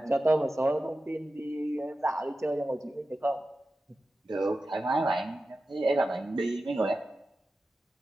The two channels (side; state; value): both; normal; correlation 0.93